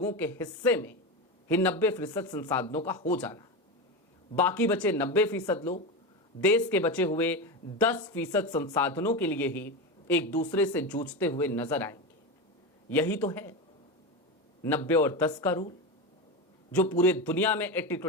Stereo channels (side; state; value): both; normal; correlation 0.18